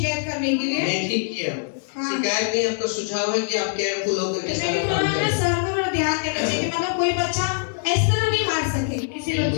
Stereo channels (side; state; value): right; silent; digital silence